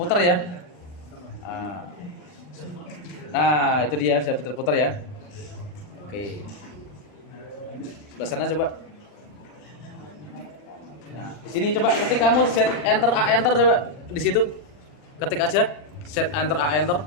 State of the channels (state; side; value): late; right; 40 ms